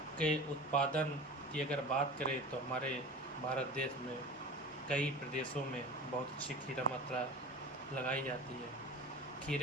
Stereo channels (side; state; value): both; normal; correlation 0.36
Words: के उत्पादन की अगर बात करें तो हमारे भारत देश में कई प्रदेशों में बहुत अच्छी खीरा मात्रा लगाई जाती है।